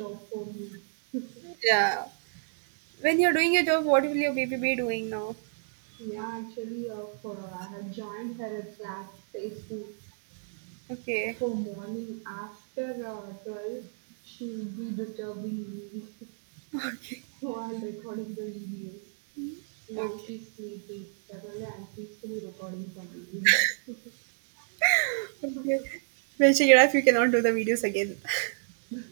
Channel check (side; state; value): left; silent; digital silence